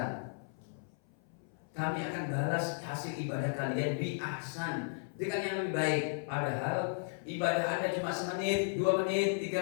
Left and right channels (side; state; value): right; silent; 55 dB below the other